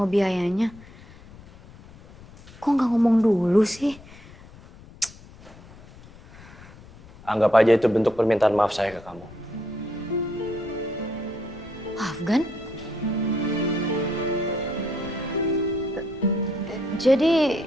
biayanya? Kok nggak ngomong dulu sih? Anggap aja itu bentuk permintaan maaf saya ke kamu. Afgan? Jadi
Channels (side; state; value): left; noise; rumble, 20 dB below the sound